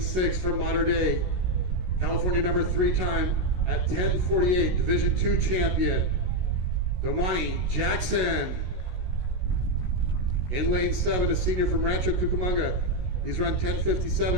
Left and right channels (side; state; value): left; late; 16 ms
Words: from Mater Dei, California number 3 time at 10:48, Division II champion, Domani Jackson. In lane 7, a senior from Rancho Cucamonga. He's run